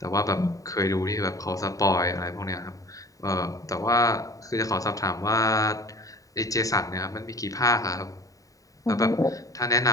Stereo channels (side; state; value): right; late; 0.16 ms